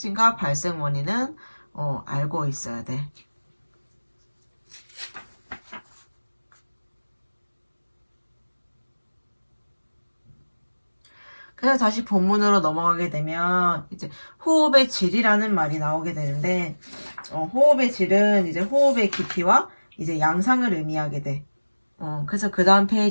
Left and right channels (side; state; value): both; inverted; correlation -1.00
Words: 발생 원인은 알고 있어야 돼. 그래서 다시 본문으로 넘어가게 되면 이제 호흡의 질이라는 말이 나오게 되는데 호흡의 질은 이제 호흡의 깊이와 이제 양상을 의미하게 돼. 그래서 그 다음